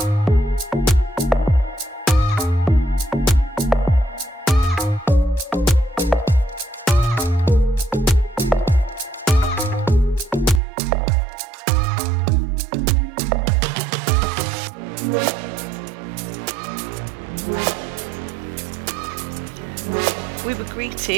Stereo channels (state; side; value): drops out; left; at 10.6 s